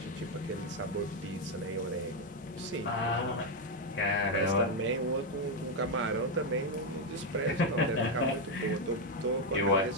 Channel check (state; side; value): normal; both; correlation 0.04